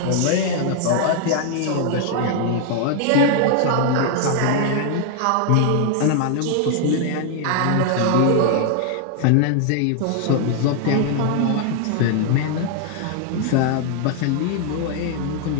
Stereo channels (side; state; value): both; different; correlation 0.00